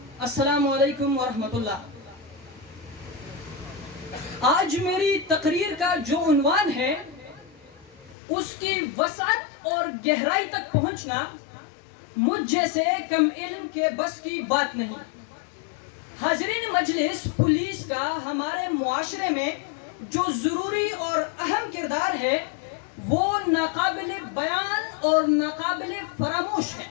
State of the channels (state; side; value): drops out; right; at 8.2 s